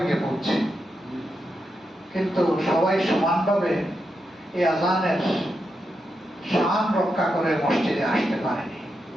গিয়ে পৌঁছে। কিন্তু সবাই সমানভাবে এই আজানের শান রক্ষা করে মসজিদে আসতে পারেনি।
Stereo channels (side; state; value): both; normal; correlation 0.86